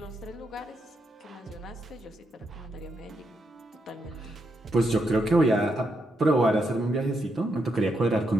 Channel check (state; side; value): normal; both; correlation 0.81